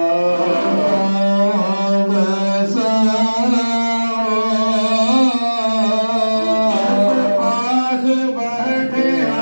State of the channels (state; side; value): inverted; both; correlation -1.00